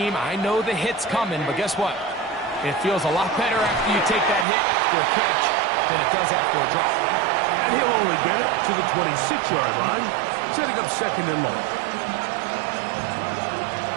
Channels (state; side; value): drops out; left; at 4.5 s